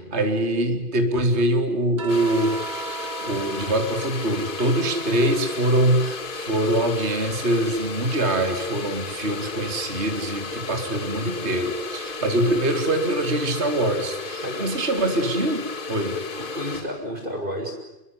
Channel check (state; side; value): late; left; 2.5 ms